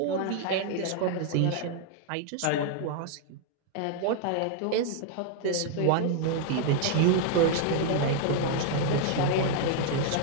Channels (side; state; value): both; different; correlation 0.00